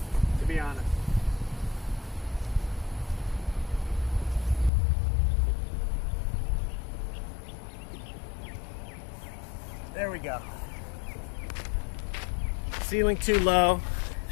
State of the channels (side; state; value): right; drops out; at 4.7 s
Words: to be honest. There we go. Ceiling too low,